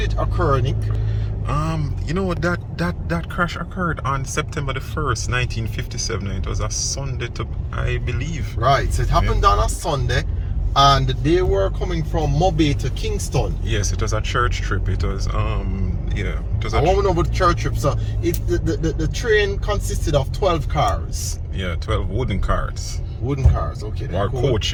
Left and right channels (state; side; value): identical; both; correlation 1.00